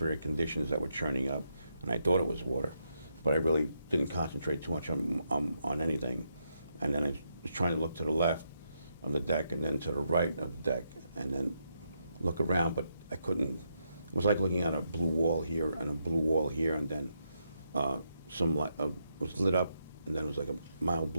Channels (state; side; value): inverted; both; correlation -0.80